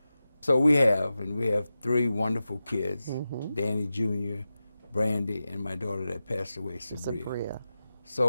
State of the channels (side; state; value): both; inverted; correlation -0.93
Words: So we have three wonderful kids, mm-hmm. Danny Jr., Brandy, and my daughter that passed away, Sabria.